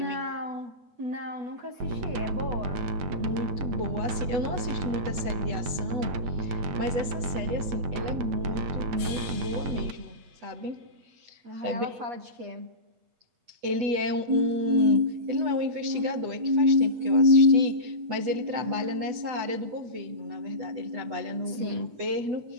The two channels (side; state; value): left; late; 8.1 ms